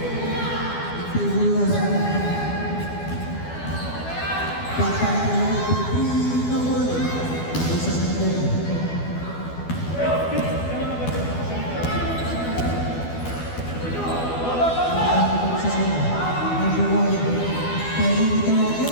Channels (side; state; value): right; late; 12 ms